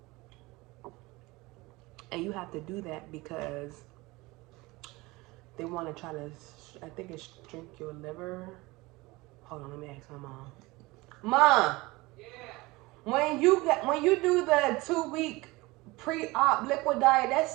And you have to do that because they want to try to, I think it's shrink your liver. Hold on, let me ask my mom. Mom, yeah. When you do the 2-week pre-op liquid diet,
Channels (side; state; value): left; quieter; 22.0 dB